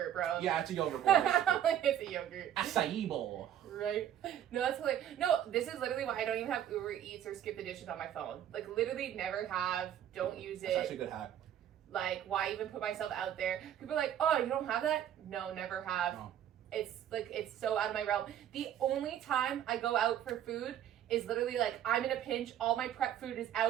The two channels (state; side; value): quieter; left; 10.7 dB